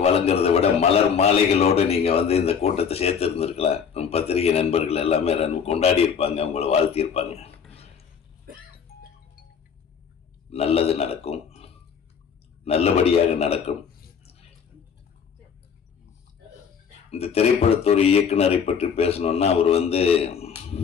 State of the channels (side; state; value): right; quieter; 6.9 dB